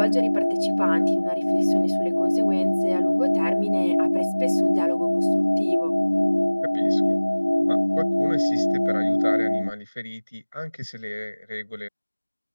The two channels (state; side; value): inverted; both; correlation -1.00